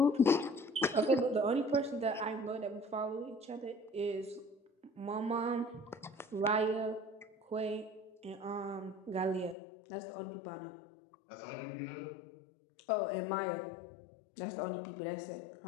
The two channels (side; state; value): right; drops out; at 9.6 s